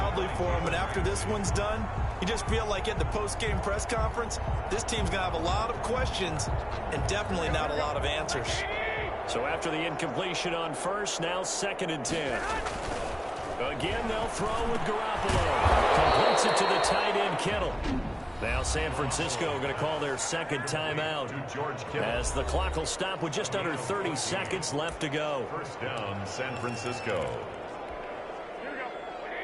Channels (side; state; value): both; identical; correlation 1.00